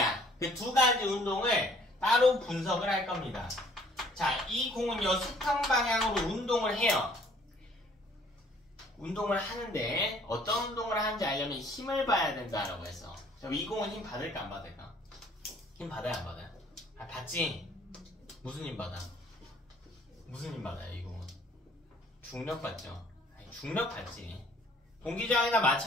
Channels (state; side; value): normal; both; correlation 0.58